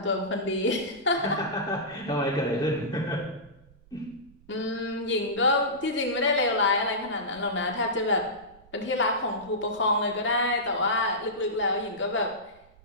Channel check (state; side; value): noise; right; rumble, 26 dB below the sound